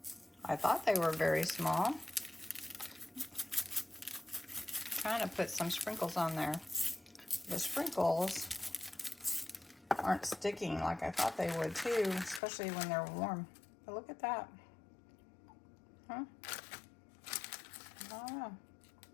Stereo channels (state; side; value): drops out; right; at 12.4 s